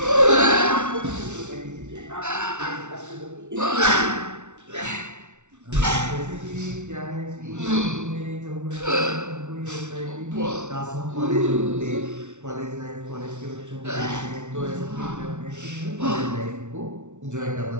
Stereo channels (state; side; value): late; left; 0.84 ms